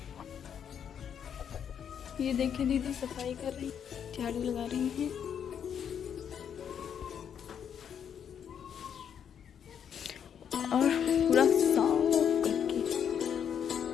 ये देखिए दीदी सफाई कर रही, झाड़ू लगा रही हैं। और पूरा साफ करके।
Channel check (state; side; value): quieter; right; 8.3 dB